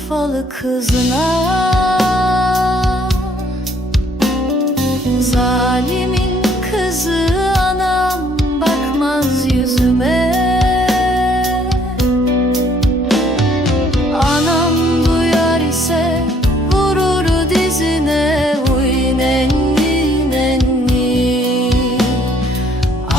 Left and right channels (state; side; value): normal; both; correlation 0.63